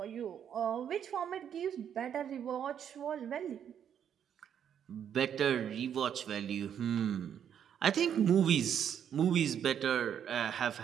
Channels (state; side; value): quieter; left; 8.8 dB